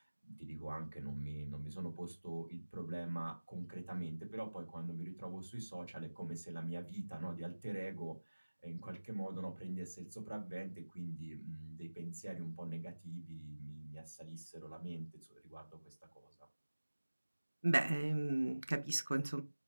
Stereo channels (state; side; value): inverted; both; correlation -1.00